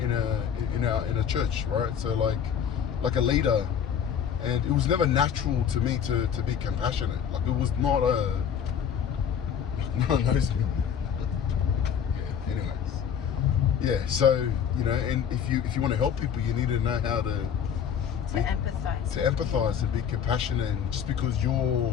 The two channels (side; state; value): right; quieter; 8.1 dB